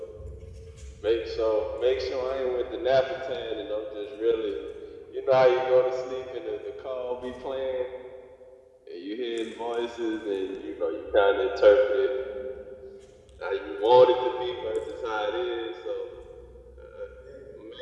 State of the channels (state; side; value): identical; both; correlation 1.00